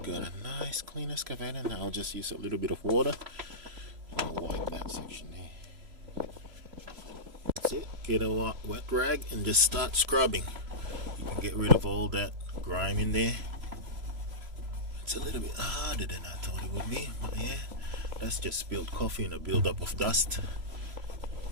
a nice clean excavator. Now I'll just use a little bit of water and I'll wipe that section there. That's it. Get a wet rag and just start scrubbing. You can get rid of all that grime in there. It's a little bit harder than I thought it would be, but yeah, that's just spilled coffee and a buildup of dust.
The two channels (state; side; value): late; left; 3.0 ms